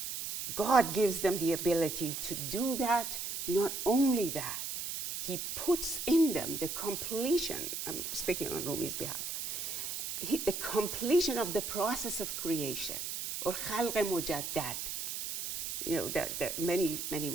God gives them the ability to do that. Not only that, he puts in them the completion, I'm speaking on Rumi's behalf, the completion of the process of creation, or خلق مجدد. You know, that many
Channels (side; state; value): right; noise; hiss, 4 dB below the sound